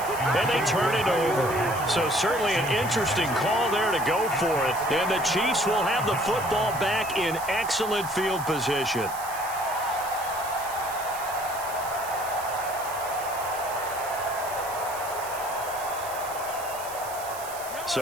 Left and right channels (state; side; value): noise; right; hiss, 12 dB below the sound